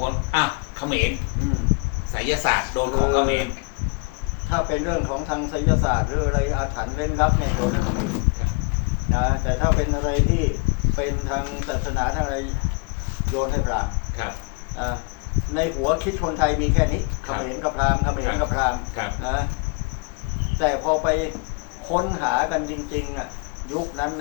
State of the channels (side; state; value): right; quieter; 30.8 dB